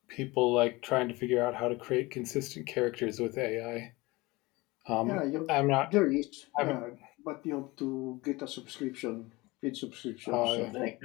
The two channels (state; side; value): quieter; right; 22.4 dB